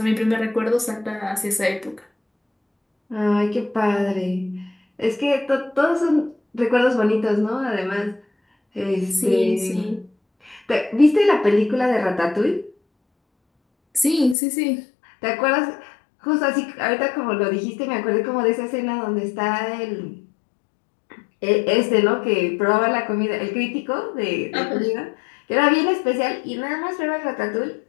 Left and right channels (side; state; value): right; drops out; at 14.4 s